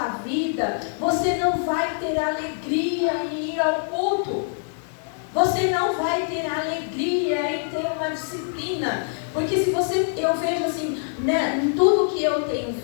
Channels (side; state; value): right; silent; digital silence